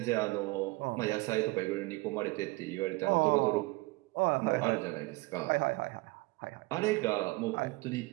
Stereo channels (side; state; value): left; quieter; 23.4 dB